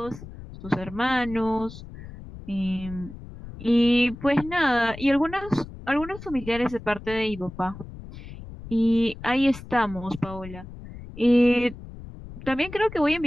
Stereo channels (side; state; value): left; noise; rumble, 14 dB below the sound